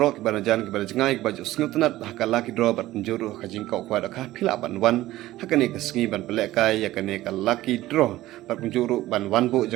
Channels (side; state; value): left; quieter; 16.0 dB